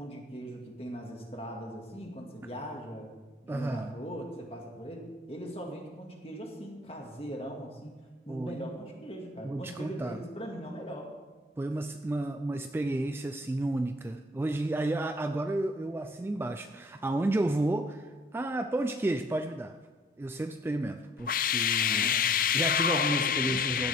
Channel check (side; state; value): both; normal; correlation 0.57